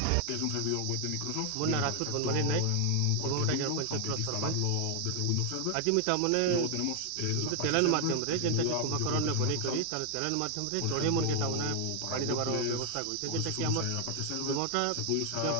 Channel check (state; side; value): different; both; correlation 0.00